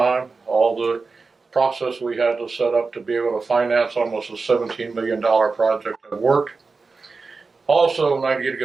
All the process we had to set up to be able to finance almost a $17 million project have worked. Also, I need to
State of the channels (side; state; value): left; quieter; 4.3 dB